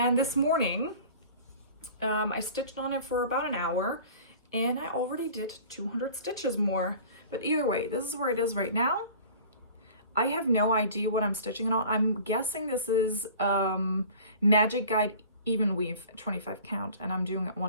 this morning, I stitched on it for about an hour, and I already did 200 stitches more. But either way, this is where it is right now. I have no idea what I'm stitching it on. I'm guessing this is Magic Guide Even Weave 25 count, and I'm doing it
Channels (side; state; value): both; inverted; correlation -0.44